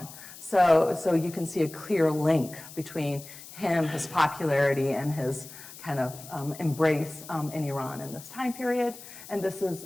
So you can see a clear link between him, his popularity, and his kind of embrace in Iran in this time period. And this is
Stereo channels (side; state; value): left; noise; hiss, 16 dB below the sound